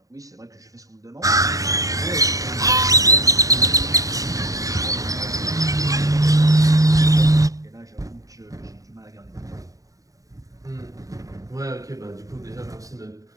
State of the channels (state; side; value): late; left; 0.16 ms